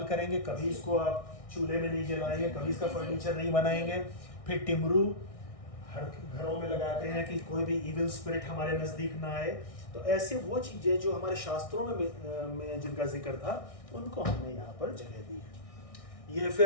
करेंगे, कभी इसको आप चूल्हे में नहीं जलाएंगे, कभी इसका फर्नीचर नहीं बनाएंगे। फिर टिमरू हर घरों में लगाते हैं कि कोई भी इविल स्पिरिट हमारे नज़दीक ना आए। तो ऐसे वो चीज़ें जो हमारे शास्त्रों में जिनका जिक्र था उनको हमने यहाँ पर जगह दी है। ये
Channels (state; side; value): late; right; 1.6 ms